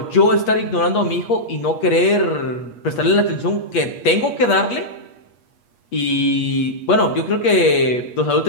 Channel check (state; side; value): late; right; 8.4 ms